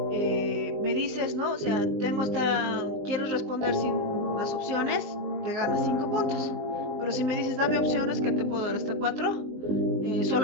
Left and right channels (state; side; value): late; left; 20 ms